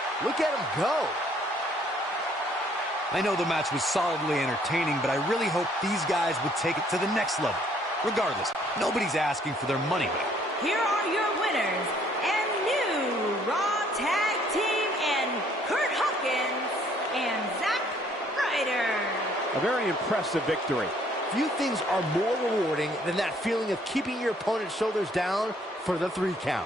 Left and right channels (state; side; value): normal; both; correlation 0.63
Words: Look at him go. I know the match was solidly entertaining, but I really hope these guys would take it to the next level. Regardless, nobody's asking for their money back. Here are your winners and new Raw Tag Team and Curt Hawkins and Zack Ryder. A very impressive victory. Few things are more rewarding than that feeling of keeping your opponent's shoulders down for the 3